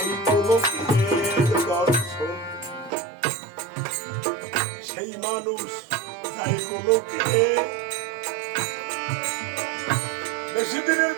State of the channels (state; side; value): drops out; left; at 2.9 s